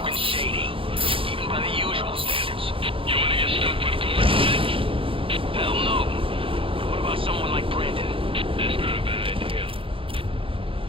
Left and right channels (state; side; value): late; left; 0.26 ms